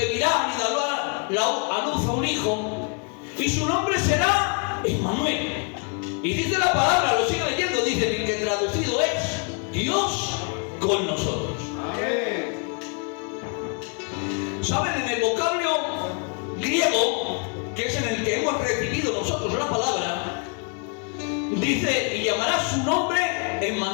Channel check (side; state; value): right; quieter; 39.0 dB